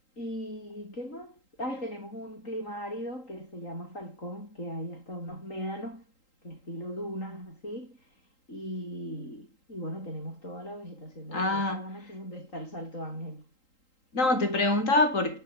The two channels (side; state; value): right; late; 3.8 ms